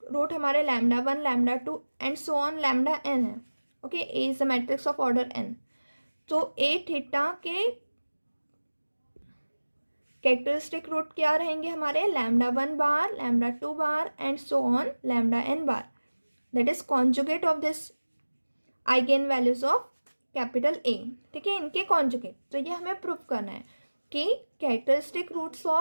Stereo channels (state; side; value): inverted; both; correlation -1.00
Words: रूट हमारे lambda 1 lambda 2 and so on lambda n है। Okay, A is the matrix of order n, तो ए थीटा के कैरेक्टरिस्टिक रूट क्या रहेंगे हमारे, lambda 1 bar lambda 2 bar and so on lambda n bar, that is conjugate of this eigen values of capital ए। ठीक है, इनके conjugate, तो ये हमें प्रूफ करना है कि characteristic roots